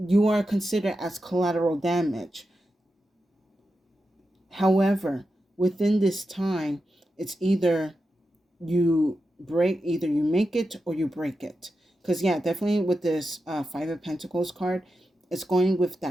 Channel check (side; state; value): both; normal; correlation 0.89